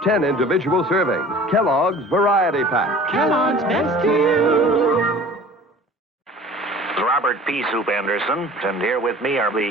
10 individual servings. Kellogg's Variety Pack. Kellogg's best to you. Robert P. Soup Anderson, and here with me are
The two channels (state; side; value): normal; both; correlation 0.45